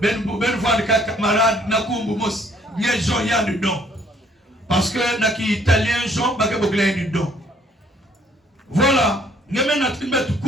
ben van camarade nakumbu mos Nye Jean y a dedans. Parce que naki italien Jean bake bokla dedans. Voilà. Ngeme na trimbet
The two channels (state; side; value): normal; both; correlation 0.62